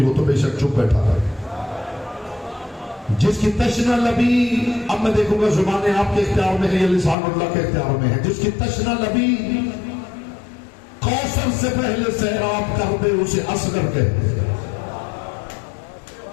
ہو تو بے شک چپ بیٹھا ہے. جس کی تشنا لبی، اب میں دیکھوں گا زبانیں آپ کے اختیار میں ہے یا لسان اللہ کے اختیار میں ہے. جس کی تشنا لبی کوثر سے پہلے سیراب کر دے اسے اصغر کہتے ہیں.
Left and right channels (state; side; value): drops out; right; at 7.2 s